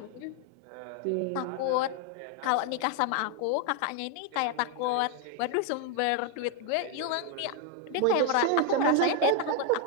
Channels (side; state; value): both; different; correlation 0.01